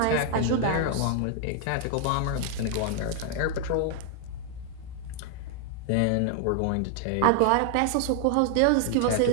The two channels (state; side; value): different; both; correlation 0.00